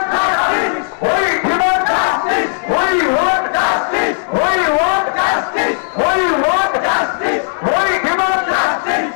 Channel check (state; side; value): silent; right; digital silence